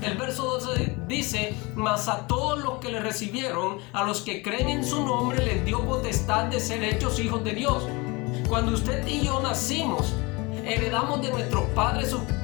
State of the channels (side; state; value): right; quieter; 25.8 dB